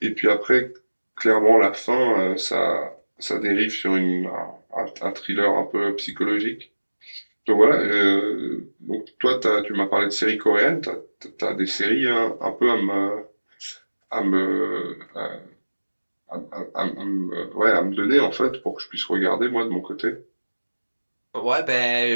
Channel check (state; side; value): inverted; both; correlation -1.00